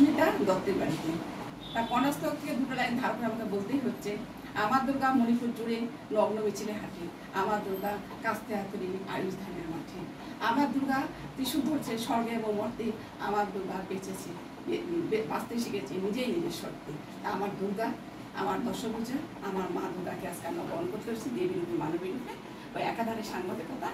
দত্তের বাড়িতে। তার কনাস্তক থেকে দুটো লাইন ধার করে আমাকে বলতেই হচ্ছে, আমার দুর্গা মণিপুর জুড়ে নগ্ন মিছিলে হাঁটে, আমার দুর্গা কাস্তে হাতুড়ি আয়ুষ ধানের মাঠে, আমার দুর্গা ত্রিশূল ধরছে স্বর্গে এবং মর্তে, আমার দুর্গা বেঁচেছে বাঁচতে শিখেছে নিজেই নিজের শর্তে। আমার দুর্গা, আমার দশভূজা, আমার মা দুর্গাকে আজকে আমরা বরণ করতে পারছি দেবীর রূপে মানবী রূপে। ওই একাধারে সাংবাদিকতা,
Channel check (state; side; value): identical; both; correlation 1.00